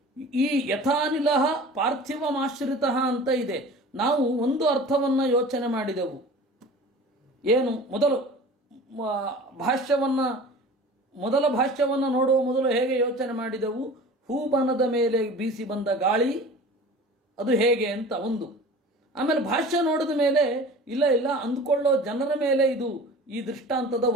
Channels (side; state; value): both; normal; correlation 0.40